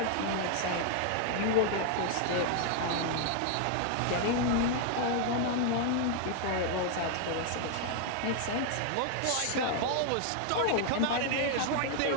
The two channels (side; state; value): both; different; correlation 0.00